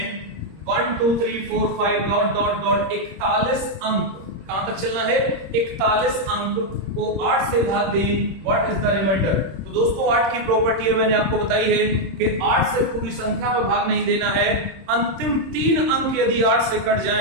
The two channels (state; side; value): late; left; 26 ms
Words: 1 2 3 4 5 डॉट डॉट डॉट 41 अंक, कहां तक चलना है 41 अंक को 8 से भाग दें, व्हाट इज द रिमाइंडर। तो दोस्तों 8 की प्रॉपर्टी है मैंने आपको बताई है कि 8 से पूरी संख्या में भाग नहीं देना है। अंतिम 3 अंक यदि 8 से कट